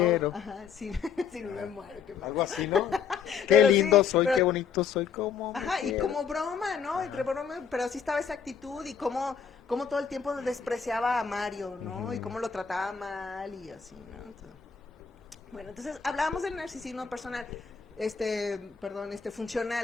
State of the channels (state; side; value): quieter; right; 6.7 dB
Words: Ajá, sí, sí, me muero. Qué mal. Algo así, ¿no? Qué Pero lindo sí, soy, pero- qué bonito soy, cómo me Ajá, y quiero. como broma, ¿no? Entre broma, pero sí estaba esa actitud y cómo todo el tiempo despreciaba a Mario, ¿no? Y cómo lo trataba mal y así, ¿no? Bueno, entonces hablábamos del narcisismo personal,